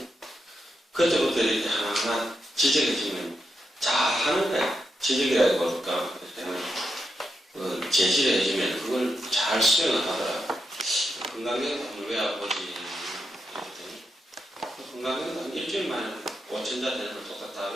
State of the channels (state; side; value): normal; both; correlation 0.84